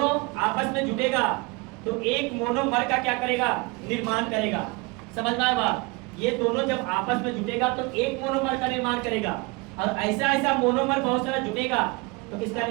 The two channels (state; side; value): quieter; left; 26.3 dB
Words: आपस में जुटेगा तो एक मोनोमर का क्या करेगा, निर्माण करेगा। समझ में आया बात? ये दोनों जब आपस में जुटेगा तो एक मोनोमर का निर्माण करेगा, और ऐसा ऐसा मोनोमर बहुत सारा जुटेगा तो किसका